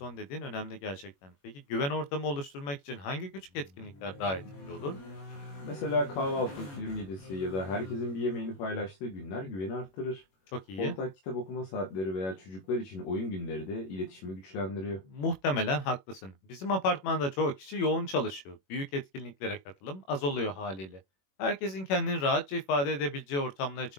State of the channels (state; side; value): late; right; 21 ms